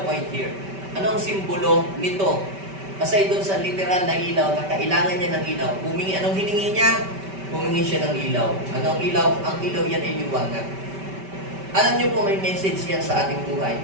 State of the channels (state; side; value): late; left; 5.2 ms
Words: point here? Ano ang simbolo nito? Aside doon sa literal na ilaw, na kailangan niya ng ilaw. Anong hiningi niya? Humingi siya ng ilaw. Ano ang ilaw? Ang ilaw yan ay liwanag. Alam niyo po, may message yan sa ating buhay.